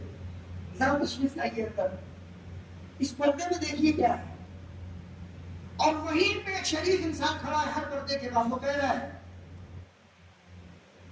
ذرا تشریف لائیے اندر، اس پردے میں دیکھیے کیا ہے. اور وہیں پہ ایک شریف انسان کھڑا ہے ہر پردے کے بعد، وہ کہہ رہا ہے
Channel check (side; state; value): both; identical; correlation 1.00